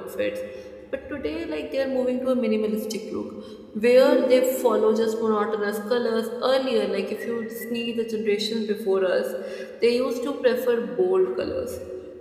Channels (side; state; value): both; identical; correlation 1.00